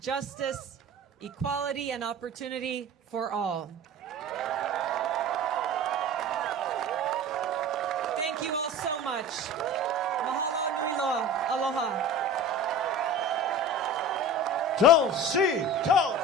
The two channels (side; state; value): both; normal; correlation 0.36